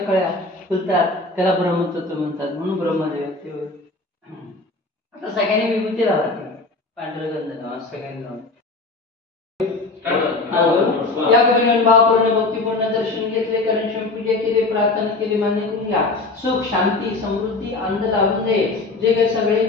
कळ्या फुलतात, त्याला ब्रह्मतत्व म्हणतात म्हणून ब्रह्मदेव. आता सगळ्यांनी विभूती लावायची, पांढरं गंध लावा सगळ्यांनी लावा. या कवीने भावपूर्ण भक्तीपूर्ण दर्शन घेतले, कारण पूजा केली, प्रार्थना केली, मान्य करून घ्या. सुख शांती समृद्धी आनंद लावून दे. जे काही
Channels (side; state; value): right; quieter; 3.4 dB